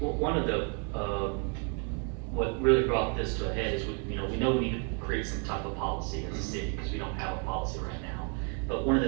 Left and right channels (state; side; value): quieter; left; 36.2 dB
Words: one of the what really brought brought this to a head is we know we need to create some type of policy as a city, because we don't have a policy right now. But one of